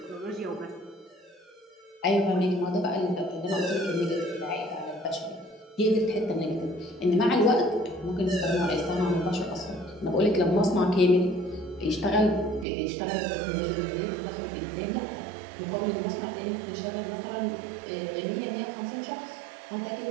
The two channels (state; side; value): drops out; left; at 12.7 s